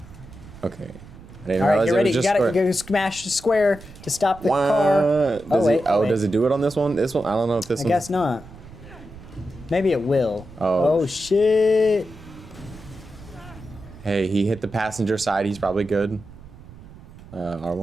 Okay. I didn't All right, realize get it ready. was You just gotta square. go smash the square to stop the car. Wait, wait. does it do it on this one? This one? I don't know if this I one. guess not. Maybe it will. Oh. Oh shit. Hey, he hit the passenger side. He's probably good.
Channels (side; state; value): right; noise; rumble, 18 dB below the sound